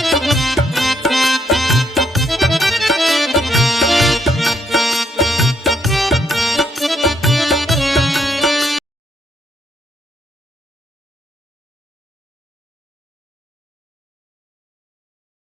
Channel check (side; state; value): both; normal; correlation 0.74